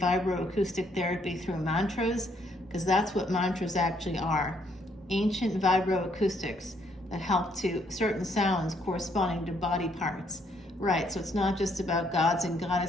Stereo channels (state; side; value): normal; both; correlation 0.70